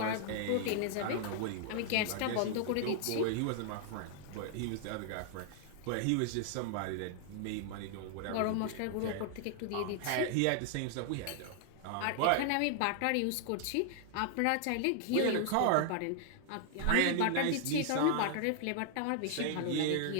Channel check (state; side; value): different; both; correlation 0.00